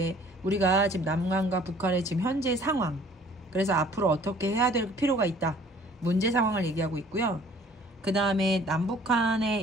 우리가 지금 남한과 북한의 지금 현재 상황, 그래서 앞으로 어떻게 해야 될 필요가 있다, 문제 상황을 얘기하고 있고요. 그 다음에 남북한에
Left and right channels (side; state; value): both; normal; correlation 0.54